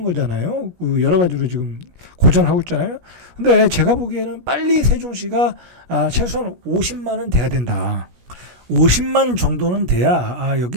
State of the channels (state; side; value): late; left; 17 ms